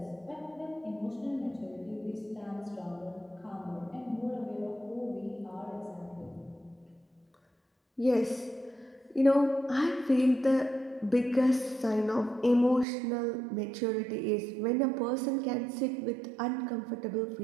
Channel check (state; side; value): drops out; left; at 12.9 s